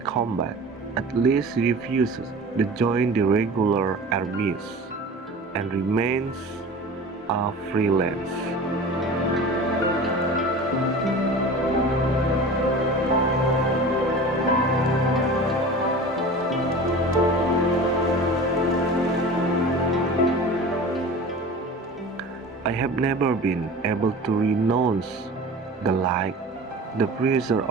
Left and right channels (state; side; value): normal; both; correlation 0.37